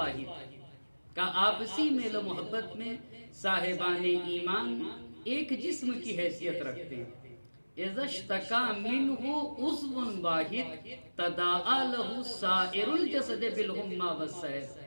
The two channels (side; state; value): both; inverted; correlation -1.00